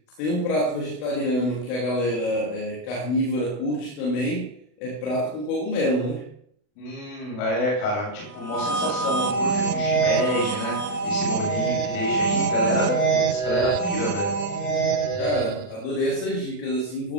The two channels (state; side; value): late; right; 40 ms